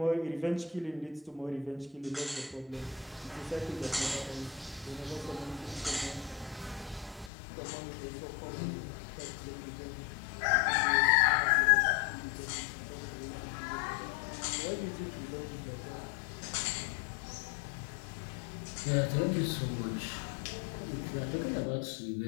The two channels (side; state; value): right; drops out; at 7.3 s